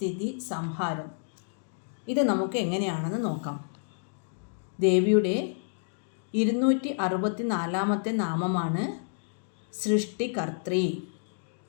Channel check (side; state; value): right; silent; digital silence